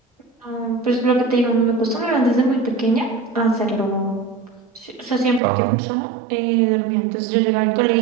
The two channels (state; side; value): drops out; left; at 5.4 s